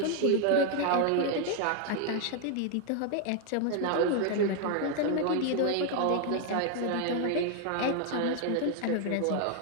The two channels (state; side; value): different; both; correlation 0.00